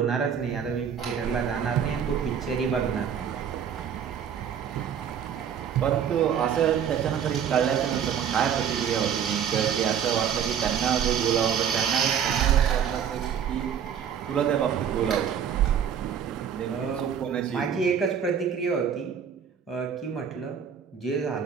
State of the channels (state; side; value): quieter; left; 8.1 dB